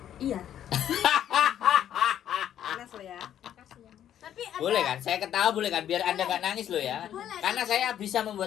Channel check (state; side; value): quieter; right; 10.6 dB